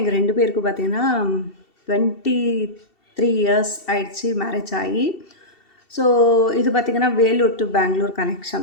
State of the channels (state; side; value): late; right; 2.7 ms